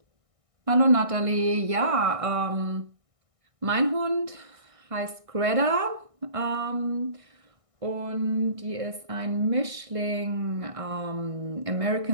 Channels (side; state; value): left; late; 1.6 ms